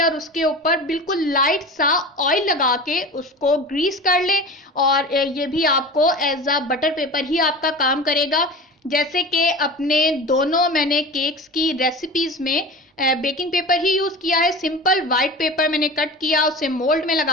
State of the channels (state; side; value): normal; both; correlation 0.32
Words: और उसके ऊपर बिल्कुल लाइट सा ऑयल लगा के उसको ग्रीस कर ले और ये भी आपको एज अ बटर पेपर ही आपका काम करेगा। जैसे कि अपने दोनों मैंने केक्स की रेसिपीज में बेकिंग पेपर ही यूज़ किया है। सिंपल वाइट पेपर मैंने कट किया, उसे मोल्ड में